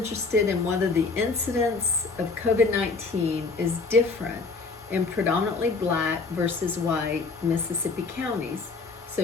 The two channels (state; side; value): quieter; right; 4.2 dB